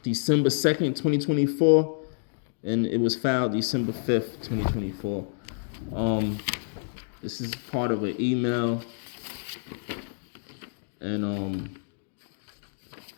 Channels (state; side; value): silent; right; digital silence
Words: December 2nd, 2024, and it was filed December 5th, 2024. This is part of an email, and